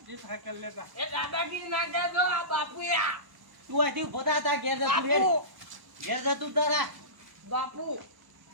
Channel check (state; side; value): late; left; 1.0 ms